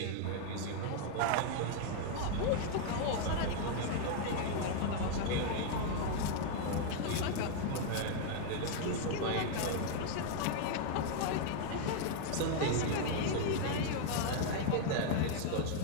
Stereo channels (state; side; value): different; both; correlation 0.00